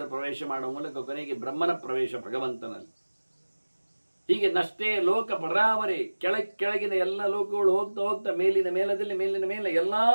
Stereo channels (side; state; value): both; inverted; correlation -1.00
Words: ಪ್ರವೇಶ ಮಾಡುವ ಮೂಲಕ ಕೊನೆಗೆ ಬ್ರಹ್ಮನ ಪ್ರವೇಶ ಭಗವಂತನಲ್ಲಿ. ಹೀಗೆ ನಷ್ಟೇ ಲೋಕ ಪರಾವರೆ, ಕೆಳಗಿನ ಎಲ್ಲ ಲೋಕಗಳು ಹೋಗ್ತಾ ಹೋಗ್ತಾ ಮೇಲಿನ ಮೇಲದಲ್ಲಿ ಮೇಲಿನ ಮೇಲೆ ಎಲ್ಲಾ